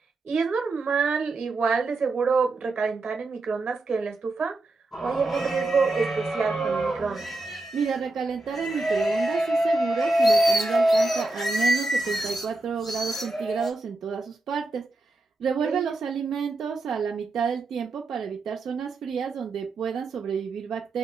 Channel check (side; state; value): left; quieter; 3.1 dB